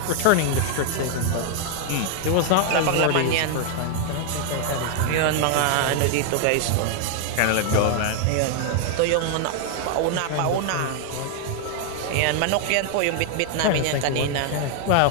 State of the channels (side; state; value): both; different; correlation 0.00